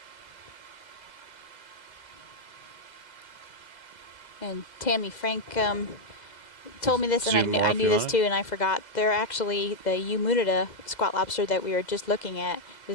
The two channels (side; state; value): right; late; 2.0 ms